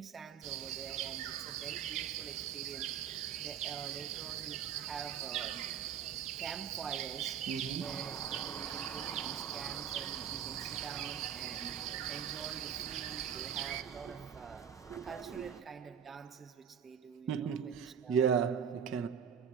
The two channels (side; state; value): left; quieter; 8.2 dB